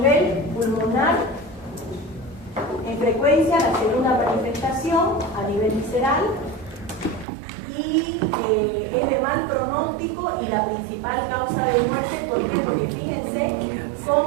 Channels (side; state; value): left; drops out; at 7.2 s